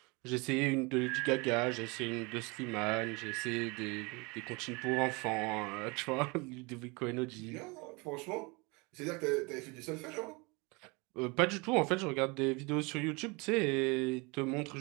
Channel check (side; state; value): left; quieter; 27.6 dB